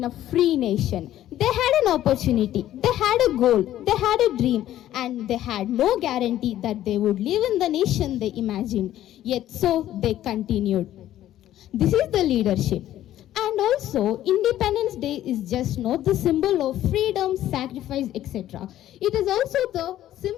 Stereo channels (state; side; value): quieter; right; 12.9 dB